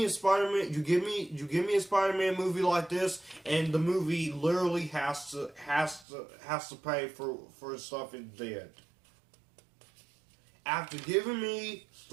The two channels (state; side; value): drops out; left; at 6.1 s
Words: a Spider-Man, you give me a Spider-Man movie like this, and the movie literally has to pay for stuff it did. After giving me